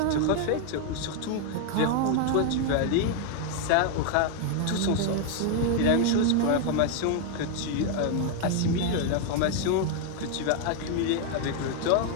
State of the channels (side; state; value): both; different; correlation 0.00